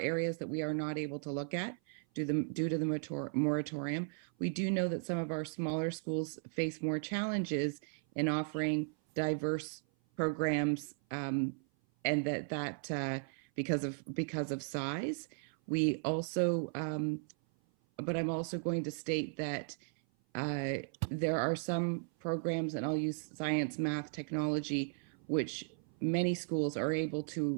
that we are not able to look at due to the moratorium. We do know that some of our smaller schools face more challenges in offering diverse programs, and that because of size. We also, but I'm also going to state that there are some programs, and I'll use science, math, technology, which many schools are able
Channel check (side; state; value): left; silent; 54 dB below the other